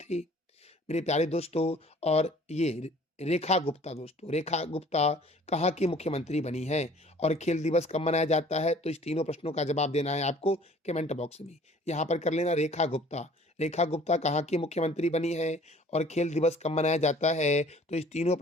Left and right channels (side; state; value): both; normal; correlation 0.52